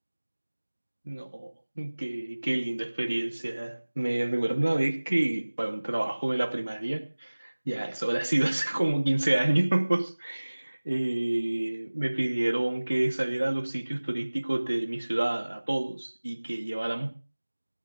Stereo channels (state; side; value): inverted; both; correlation -1.00